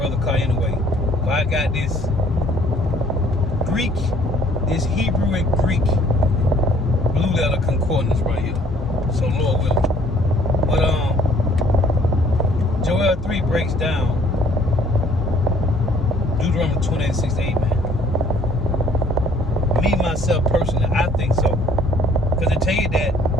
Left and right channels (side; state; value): both; normal; correlation 0.59